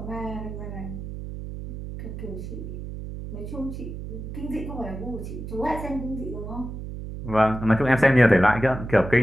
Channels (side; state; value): right; noise; hum, 8 dB below the sound